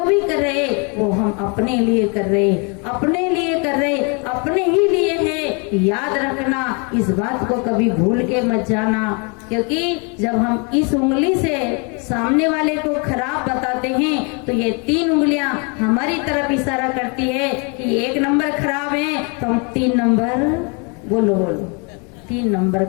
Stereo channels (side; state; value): right; quieter; 34.0 dB